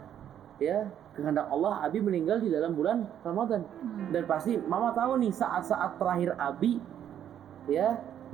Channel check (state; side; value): quieter; left; 10.0 dB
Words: ya kehendak Allah Abi meninggal di dalam bulan Ramadan. Dan pasti Mama tahu nih saat-saat terakhir Abi ya